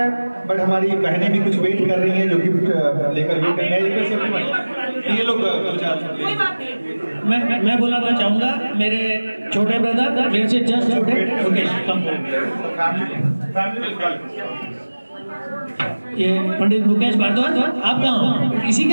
बट हमारी बहनें भी कुछ वेट कर रही हैं जो गिफ्ट लेकर वेट कर रही हैं। ये लोग मैं बुलाना चाहूंगा मेरे छोटे ब्रदर, मेरे से जस्ट छोटे मुकेश। ये पंडित मुकेश भारद्वाज, आप कहाँ हो? इसी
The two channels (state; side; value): inverted; both; correlation -1.00